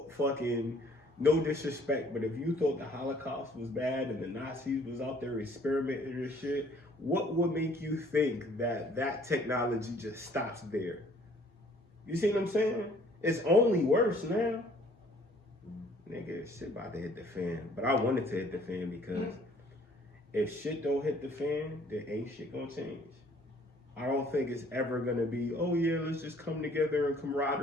fucking, no disrespect, but if you thought the Holocaust was bad and the Nazis was out there experimenting and shit, what would make you think that technology just stops there? You see what I'm saying? It's only worse now. Nigga, shit about to hit the fan. But I wanted to hit the fan because if shit don't hit the fan, then ain't shit gonna change. I don't think it's ever gonna be, oh yeah, let's just come together in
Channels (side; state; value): both; normal; correlation 0.58